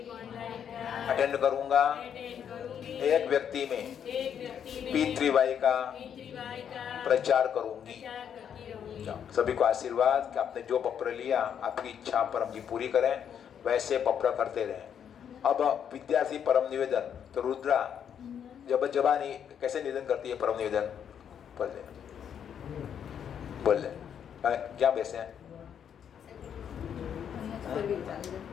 अटेंड करूंगा। एक व्यक्ति में पितृवाई का प्रचार करूंगी। सभी को आशीर्वाद कि आपने जो पत्र लिया आपकी इच्छा परम जी पूरी करें, वैसे पत्र करते रहें। अब विद्यार्थी परम निवेदन तो रुद्रा जब जबानी कैसे निवेदन करती है परम निवेदन? बोल ले क्या बैसे हैं? फिर भी चलेगा।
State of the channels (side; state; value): right; quieter; 8.4 dB